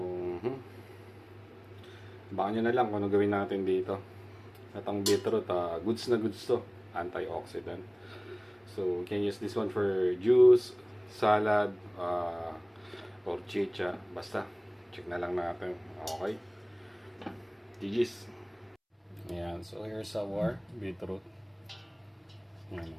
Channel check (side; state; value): both; identical; correlation 1.00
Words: baka nyo na lang kung ano gawin natin dito. At ang beetroot, goods na goods to. Antioxidant. So, you can use this one for juice, salad, or chicha. Basta, check na lang natin. Okay. GG's. Ayan. So, here's our beetroot.